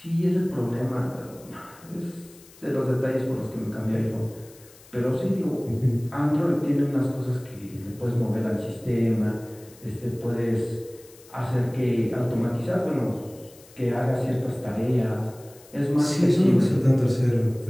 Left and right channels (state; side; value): noise; left; hiss, 24 dB below the sound